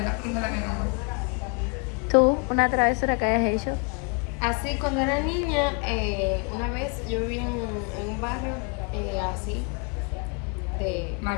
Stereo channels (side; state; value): right; quieter; 34.9 dB